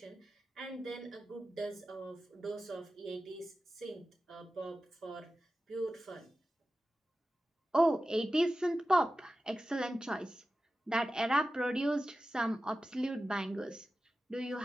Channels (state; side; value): normal; both; correlation 0.94